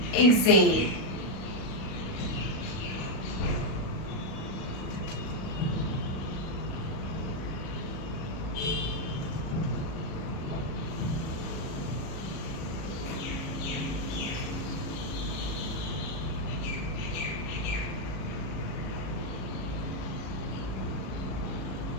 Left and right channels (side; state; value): right; late; 37 ms